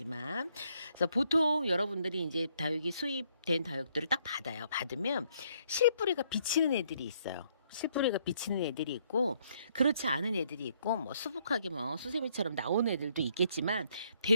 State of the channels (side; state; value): both; inverted; correlation -0.70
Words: 그래서 보통 여러분들이 이제 다육이 수입된 다육들을 딱 받으면 실뿌리가 비치는 애들이 있어요. 실뿌리가 비치는 애들이 있고, 그렇지 않은 애들이 있고, 뭐 수북하게 뭐 수세미처럼 나오는 애들도 있겠지만,